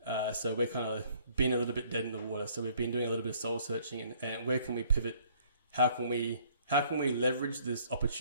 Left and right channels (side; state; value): both; inverted; correlation -0.61